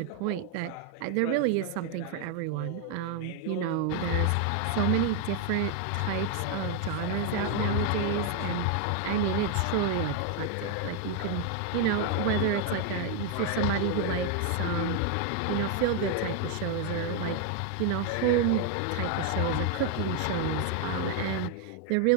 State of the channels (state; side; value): different; both; correlation 0.00